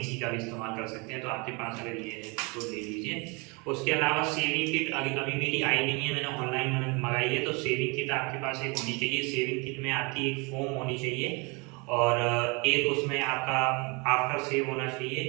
का भी इस्तेमाल कर सकते हैं, तो आपके पास अगर ये है तो ले लीजिए। उसके अलावा सेविंग किट अभी अभी मेरी आई नहीं है, मैंने ऑनलाइन मंगाई है, तो सेविंग किट आपके पास एक होनी चाहिए। सेविंग किट में आपकी एक फोम होनी चाहिए और एक उसमें आपका आफ्टर सेव होना चाहिए।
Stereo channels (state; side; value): quieter; left; 29.4 dB